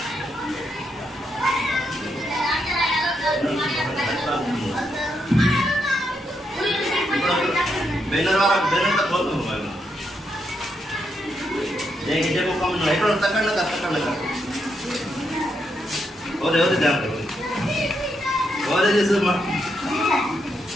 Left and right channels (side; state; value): both; normal; correlation 0.80